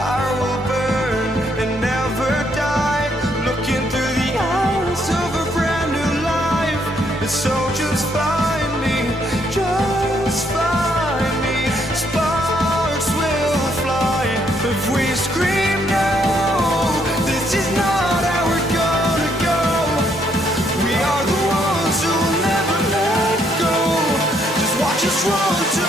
will burn and never die, looking through the eyes of a brand new life. And so just find me, just find me. Sparks will fly if we scream no. This is not how we're gonna go. We are the ones who will never let go. Just watch us run to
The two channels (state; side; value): normal; both; correlation 0.72